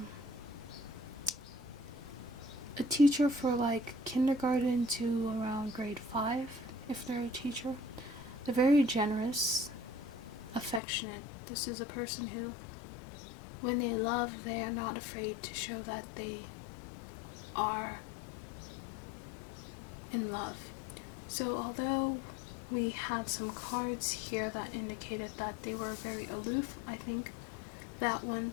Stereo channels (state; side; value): drops out; right; at 10.8 s